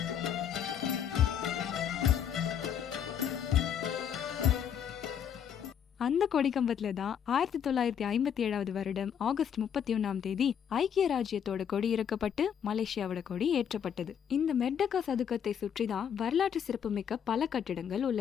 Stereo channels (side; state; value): right; quieter; 8.4 dB